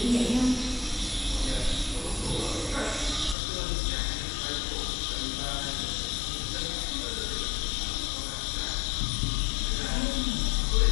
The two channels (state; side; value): drops out; right; at 3.4 s